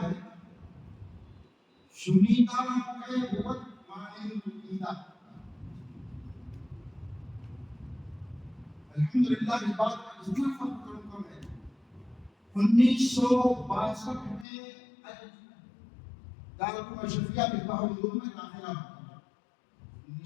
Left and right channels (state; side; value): drops out; right; at 14.5 s